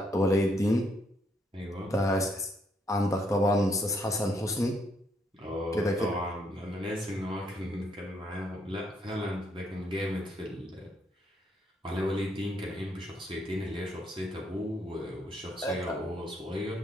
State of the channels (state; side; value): normal; both; correlation 0.73